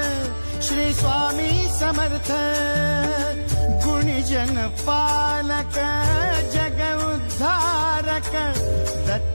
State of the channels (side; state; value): both; inverted; correlation -1.00